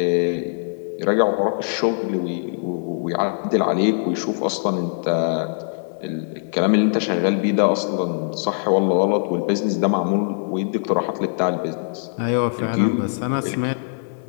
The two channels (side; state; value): right; silent; digital silence